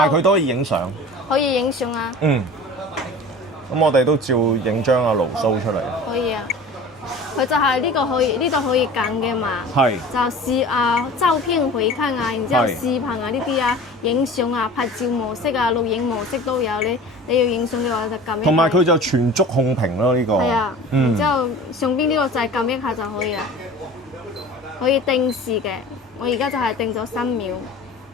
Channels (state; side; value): normal; both; correlation 0.39